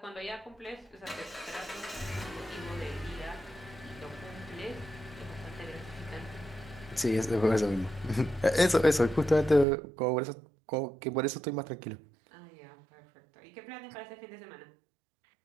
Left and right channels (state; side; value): drops out; left; at 9.7 s